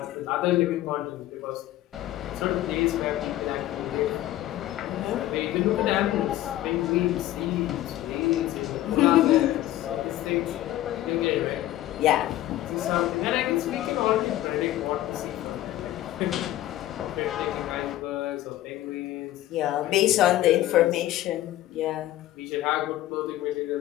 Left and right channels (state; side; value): quieter; right; 14.5 dB